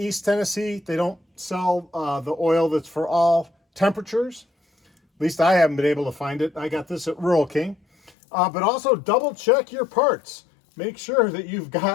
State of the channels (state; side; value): drops out; right; at 8.1 s